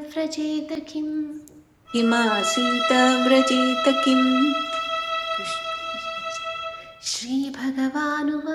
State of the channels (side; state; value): both; identical; correlation 1.00